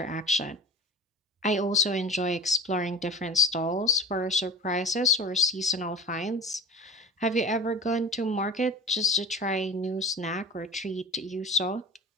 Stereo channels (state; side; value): normal; both; correlation 0.36